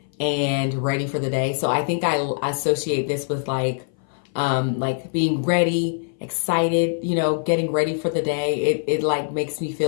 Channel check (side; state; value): right; silent; 59 dB below the other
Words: and ready for the day. So I think I associate this with like being ready, excited, you know, getting ready for the day. It like makes me